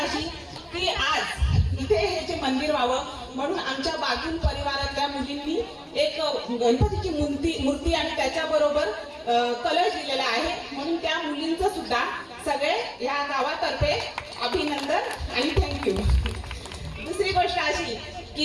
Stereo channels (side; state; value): both; identical; correlation 1.00